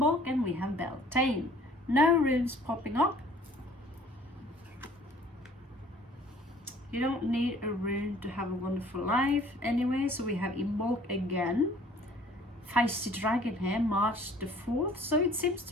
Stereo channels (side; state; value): both; normal; correlation 0.54